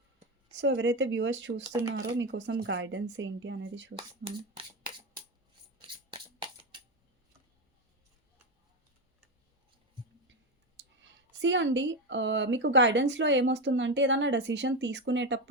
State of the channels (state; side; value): normal; both; correlation 0.14